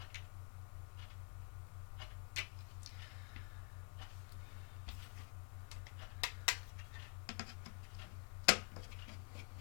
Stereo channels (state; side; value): quieter; right; 39.8 dB